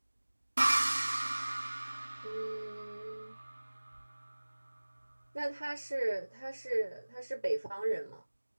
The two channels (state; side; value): inverted; both; correlation -1.00